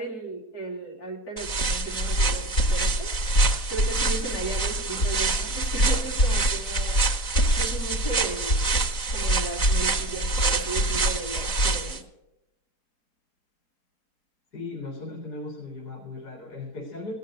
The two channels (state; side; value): late; right; 4.0 ms